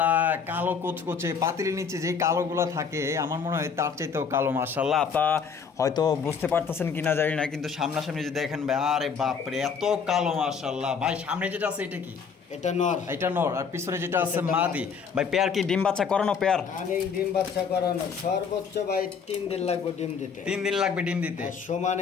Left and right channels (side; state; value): right; quieter; 6.1 dB